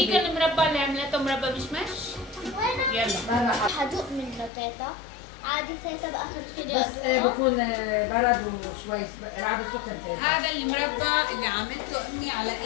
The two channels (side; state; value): right; drops out; at 4.5 s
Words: المربى اللي عملته مربى مشمش. يلا حدوق منه تيتا. عادي تيتا باخر الفيديو بس أدوقه. بكون برد وشوي لعبه سكر. هذا المربى اللي عملته امي على